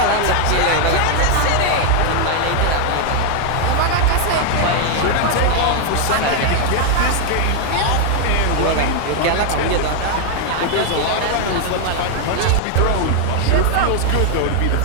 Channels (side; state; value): both; different; correlation 0.00